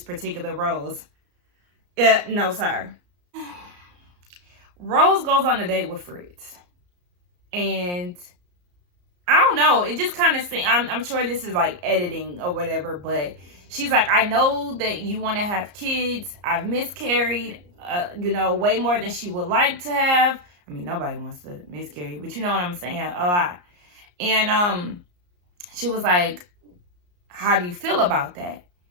particular roles. Yeah, no, sir. Rose goes on a date with Fritz. And I don't know. It just kind of seems, I'm sure this is like editing or whatever, but she's like, I know that you want to have kids. I've miscarried, you know, way more than she would like to have. I mean, nobody wants to miscarry, but you know what I'm saying? A lot. And she was like, how do you feel about that?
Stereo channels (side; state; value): left; late; 34 ms